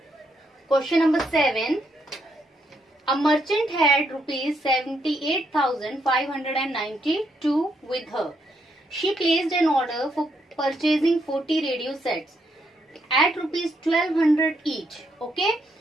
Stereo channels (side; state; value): both; normal; correlation 0.77